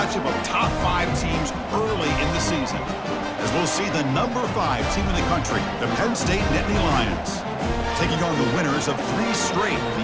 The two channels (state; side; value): identical; both; correlation 1.00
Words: of top 5 teams early in the season. As we'll see the number 5 team in the country, the Penn State Nittany Lions, taking on the winners of 3 straight,